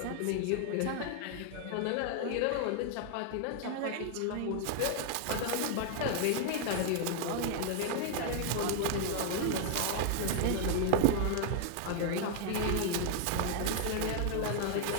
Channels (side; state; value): both; different; correlation 0.00